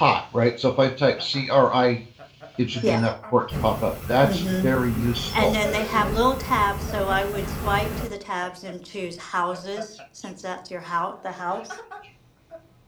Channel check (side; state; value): both; identical; correlation 1.00